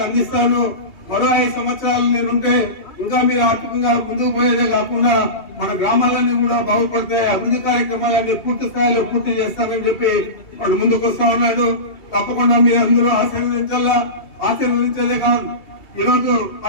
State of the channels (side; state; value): right; late; 2.7 ms